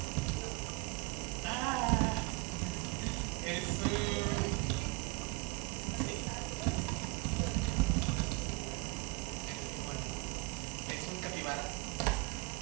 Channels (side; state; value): left; quieter; 24.0 dB